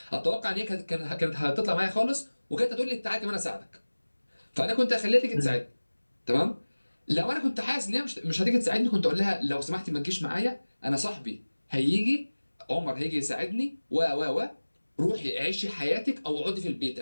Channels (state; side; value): inverted; both; correlation -1.00